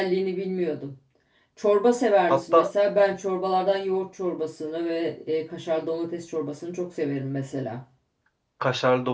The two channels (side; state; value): both; identical; correlation 1.00